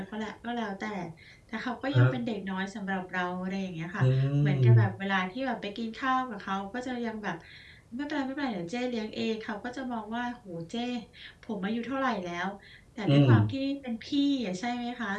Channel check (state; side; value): identical; both; correlation 1.00